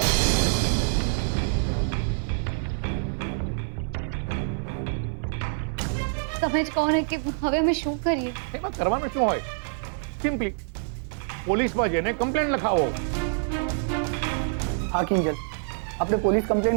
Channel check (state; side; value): silent; left; 57 dB below the other